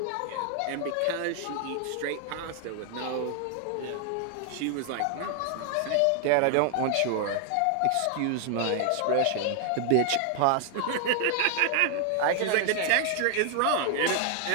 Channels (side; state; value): both; different; correlation 0.00